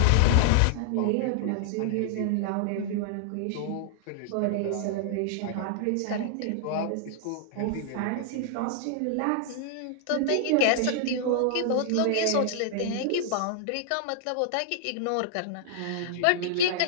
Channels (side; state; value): both; different; correlation -0.01